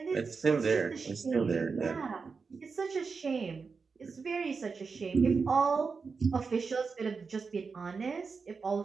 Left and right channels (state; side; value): quieter; left; 4.9 dB